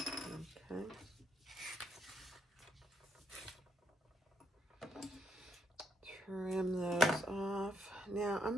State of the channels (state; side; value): normal; both; correlation 0.75